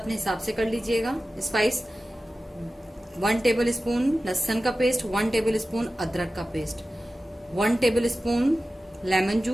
हिसाब से कर लीजिएगा। स्पाइस 1 टेबल स्पून लहसुन का पेस्ट, 1 टेबल स्पून अदरक का paste, 1 table spoon lemon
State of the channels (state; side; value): normal; both; correlation 0.95